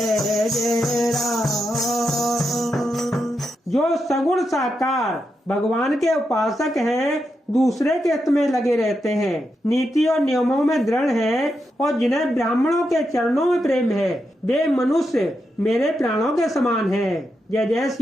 जय राम। जो सगुण साकार भगवान के उपासक हैं, दूसरे के हित में लगे रहते हैं, नीति और नियमों में दृढ़ हैं और जिन्हें ब्राह्मणों के चरणों में प्रेम है, वे मनुष्य मेरे प्राणों के समान हैं। जय जय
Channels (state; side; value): normal; both; correlation 0.85